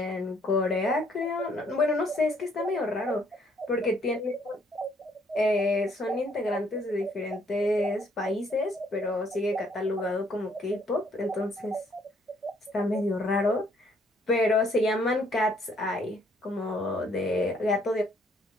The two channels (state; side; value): normal; both; correlation 0.66